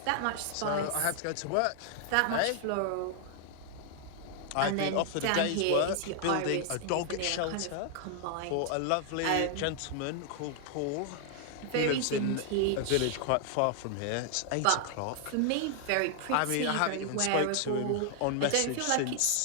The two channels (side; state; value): both; different; correlation 0.00